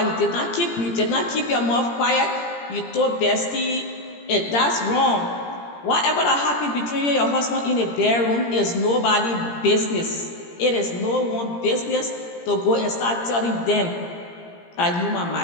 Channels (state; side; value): late; right; 17 ms